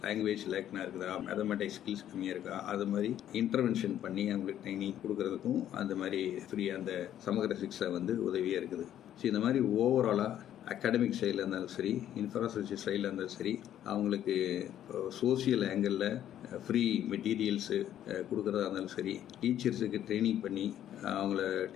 லாங்குவேஜ் லேக்னா இருக்குதா, மேத்தமெட்டிக்ஸ் ஸ்கில்ஸ் கம்மியாக இருக்கா, அது மாதிரி இன்டர்வென்ஷன் பண்ணி அவங்களுக்கு ட்ரைனிங் கொடுக்கறதுக்கும் அந்த மாதிரி ஃப்ரீயாக அந்த சமகர சிக்ஷா வந்து உதவியாக இருக்குது. ஸோ இந்த மாதிரி ஓவராலாக அகாடமிக் சைடில் இருந்தாலும் சரி, இன்ஃப்ராஸ்ட்ரக்சர் சைடில் இருந்தாலும் சரி, அவங்களுக்கு சோசியல் ஆங்கிளில் ஃப்ரீ மெட்டீரியல்ஸு கொடுக்குறதா இருந்தாலும் சரி, டீச்சர்ஸுக்கு ட்ரைனிங் பண்ணி அவங்கள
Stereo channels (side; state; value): right; quieter; 11.2 dB